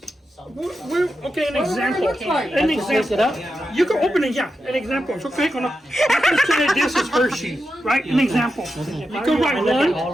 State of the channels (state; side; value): normal; both; correlation 0.89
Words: Okay, an example. An I have to pick it example. up. You can open it, yeah. An example. So click on it. Let's say this is Hershey, right? An example. You can write 1,